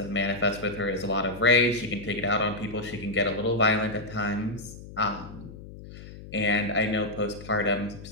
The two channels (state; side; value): noise; left; hum, 15 dB below the sound